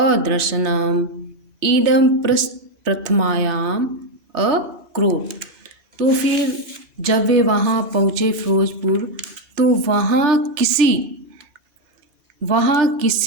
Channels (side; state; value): left; late; 3.3 ms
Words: इदं प्रथमायाम अक्रोध। तो फिर जब वे वहाँ पहुँचे फिरोजपुर, तो वहाँ